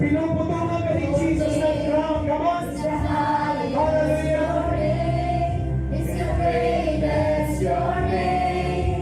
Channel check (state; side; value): identical; both; correlation 1.00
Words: Pinuputungan ka ni Jesus ng crown. Come on. Hallelujah. Your